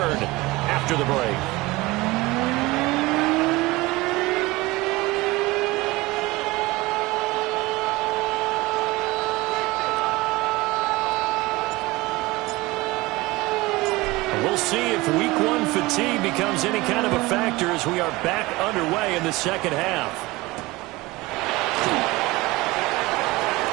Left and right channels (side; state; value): left; quieter; 21.1 dB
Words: after the break. We'll see if week 1 fatigue becomes any kind of a factor as we are back underway in the second half.